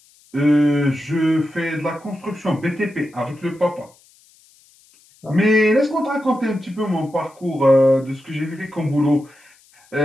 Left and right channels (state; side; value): noise; left; hiss, 30 dB below the sound